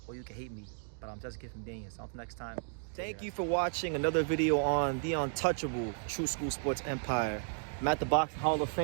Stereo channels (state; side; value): silent; left; digital silence